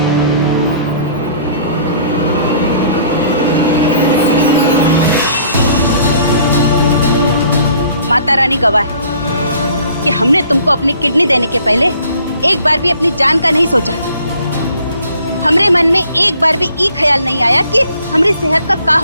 माता रानी गवाह है कि हमने तुमको अपनी किडनी देने के पहले एक बार भी अपनी जान का नहीं सोचा। हमरे मन में एक बार भी ये ख्याल नहीं आया कि हमारी सेहत का क्या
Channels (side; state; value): both; inverted; correlation -0.57